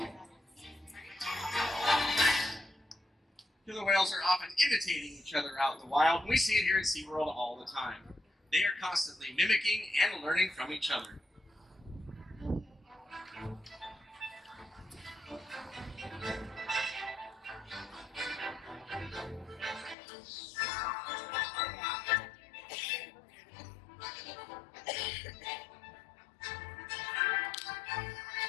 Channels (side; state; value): right; drops out; at 20.0 s